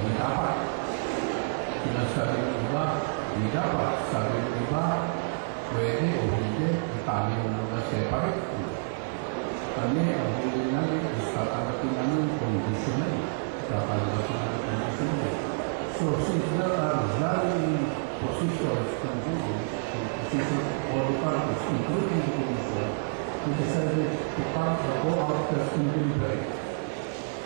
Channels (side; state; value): left; silent; digital silence